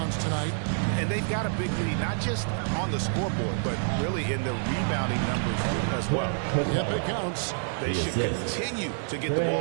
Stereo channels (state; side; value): silent; left; digital silence